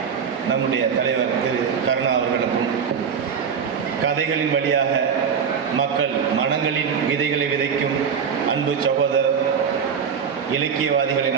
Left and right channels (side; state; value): left; quieter; 6.8 dB